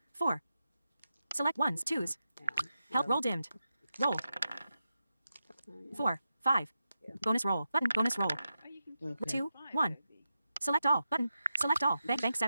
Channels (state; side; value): inverted; both; correlation -0.89